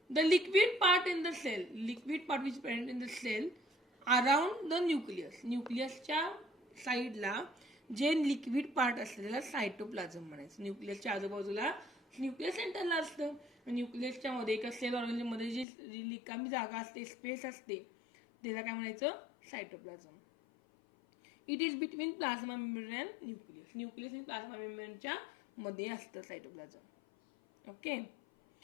The liquid part in the cell, liquid part which is present in the cell around the nucleus. न्यूक्लियसच्या साईडला जे liquid part असतं त्याला cytoplasm म्हणायचं. न्यूक्लियसच्या आजूबाजूला न्यूक्लियस सेंटरला असतं. न्यूक्लियसच्या मध्ये एका सेल ऑर्गॅनिजमध्ये जी रिकामी जागा असते, स्पेस असते, त्याला काय म्हणायचं? Cytoplasm. It is between plasma membrane and nucleus. Nucleus आणि प्लाझ्मा मेम्ब्रेनच्या मध्ये असतं cytoplasm. Okay.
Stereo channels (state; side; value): drops out; right; at 15.7 s